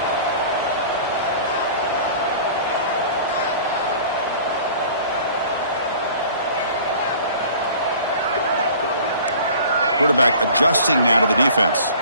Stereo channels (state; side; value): inverted; both; correlation -0.46